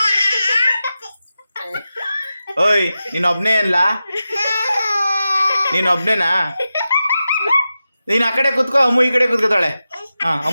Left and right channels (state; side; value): inverted; both; correlation -0.92